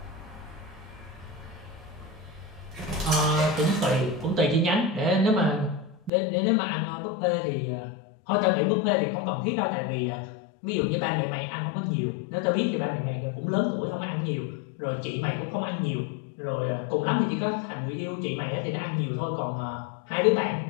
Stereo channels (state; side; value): drops out; right; at 6.1 s